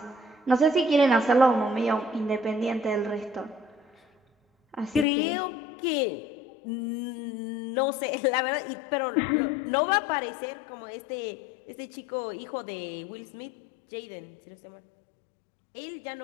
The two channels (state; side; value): drops out; right; at 5.1 s